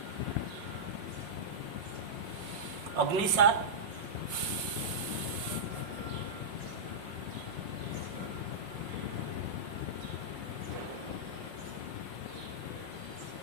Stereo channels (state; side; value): late; left; 5.5 ms